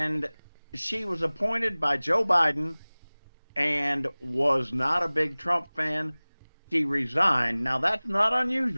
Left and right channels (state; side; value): inverted; both; correlation -1.00